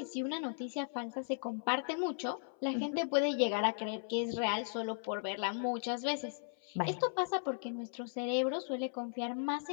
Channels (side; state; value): right; silent; 53 dB below the other